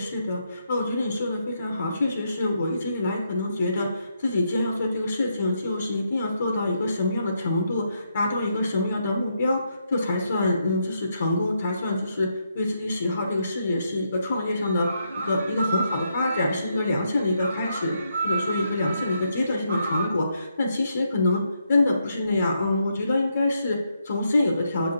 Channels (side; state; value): both; inverted; correlation -0.79